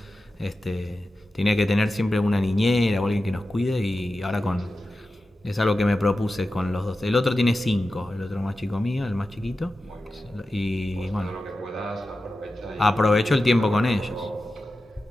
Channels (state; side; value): normal; both; correlation 0.93